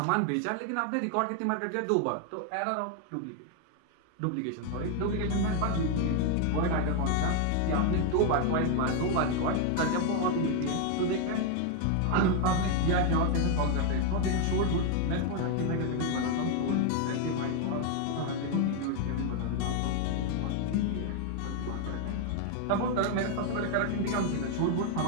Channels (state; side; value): different; both; correlation 0.00